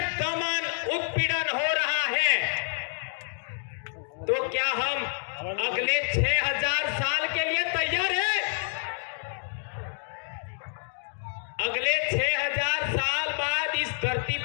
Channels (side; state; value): right; silent; digital silence